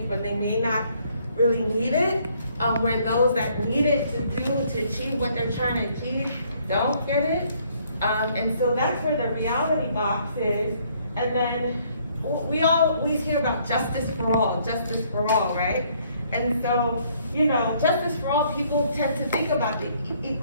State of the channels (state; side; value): inverted; both; correlation -0.65